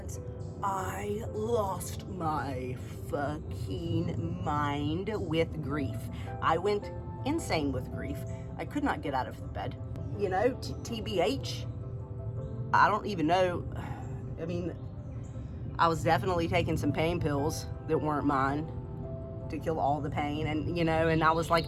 I lost my fucking mind with grief. I went insane with grief. I could not get out of the bed. You know, TBH, I don't even know. I mean, I was definitely taking some pain pills that weren't mine to kill all the pain, and you know, and I was like,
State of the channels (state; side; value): identical; both; correlation 1.00